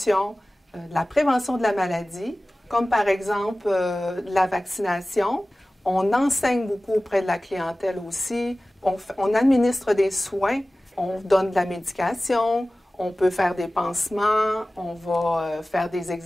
de la prévention de la maladie, comme par exemple la vaccination. On enseigne beaucoup auprès de la clientèle aussi. On administre des soins, on donne de la médication, on peut faire des pansements, on va faire des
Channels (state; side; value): normal; both; correlation 0.97